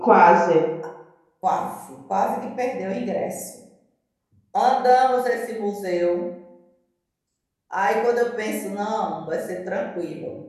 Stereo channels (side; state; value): both; identical; correlation 1.00